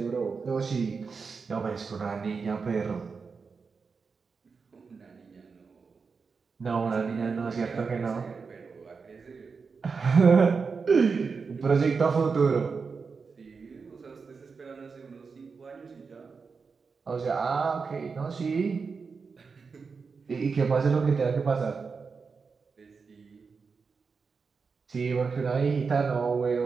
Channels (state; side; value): quieter; left; 5.1 dB